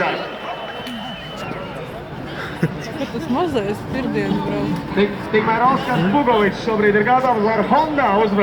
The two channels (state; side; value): identical; both; correlation 1.00